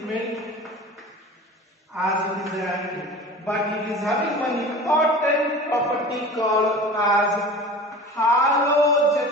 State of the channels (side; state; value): both; normal; correlation 0.37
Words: as it is an anti, but it is having one important property called as